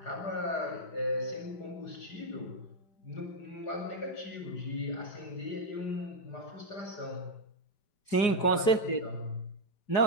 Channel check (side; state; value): right; late; 4.8 ms